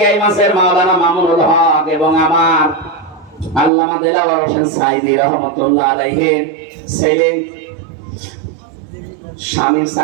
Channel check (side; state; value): left; drops out; at 3.7 s